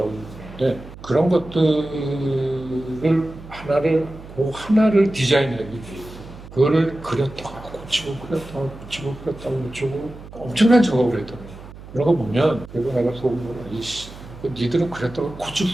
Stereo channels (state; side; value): noise; right; hum, 16 dB below the sound